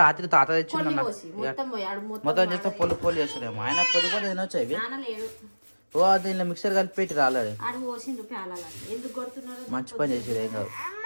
రాత్రి తాత తెచ్చిండు అన్న మొత్తం చేస్తే పొల్లు పొల్లు చేస్తాడేమో ఆయన పొద్దు కూడా తినొచ్చు ఇవి ఓ దీనిలో మిక్సర్ కలిపి పెట్టి రాలేడు మంచి పని చేసాడు ఏం కాదు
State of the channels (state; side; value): inverted; both; correlation -1.00